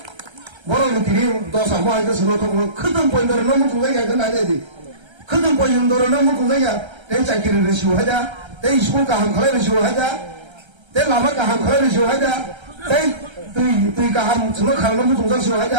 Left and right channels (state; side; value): late; left; 1.3 ms